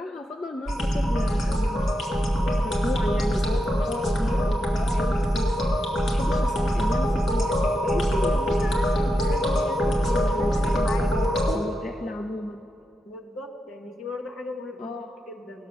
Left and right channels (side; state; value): both; normal; correlation 0.87